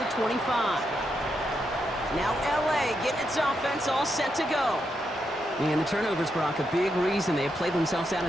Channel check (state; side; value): normal; both; correlation 0.82